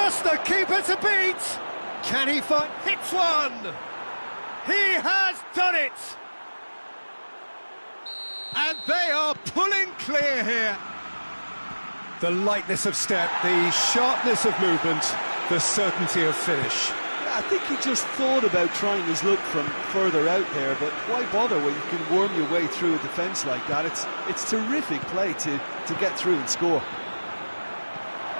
the keeper to beat! Can he find... Hits one! He has done it! And they are pulling clear here. The lightness of step, the sharpness of movement, the certainty of finish. Yeah, I think he just thought about trying his luck from further out there, but why bother when you can worm your way through a defence like that? It's terrific play to get through and score.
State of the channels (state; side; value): inverted; both; correlation -1.00